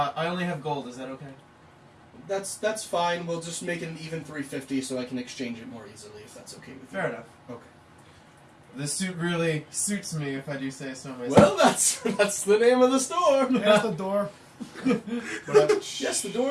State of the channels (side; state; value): both; identical; correlation 1.00